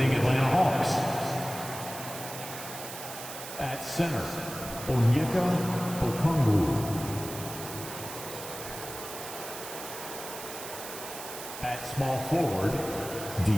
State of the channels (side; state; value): right; noise; hiss, 10 dB below the sound